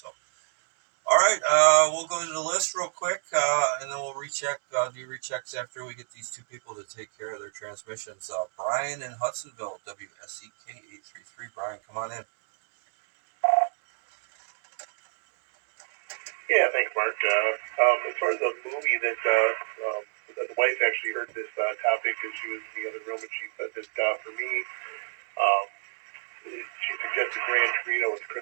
all right, we'll go to the list real quick, and then we'll recheck, do rechecks after we get these 2 people to take care of their transmissions. Brian in Hudsonville, WSEK 833. Brian, come on in. Yeah, thanks, Mark. As far as the movie that the wife actually heard this topic and she was in the other room, and she said that for me, she suggested Gran Torino with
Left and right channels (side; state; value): left; silent; digital silence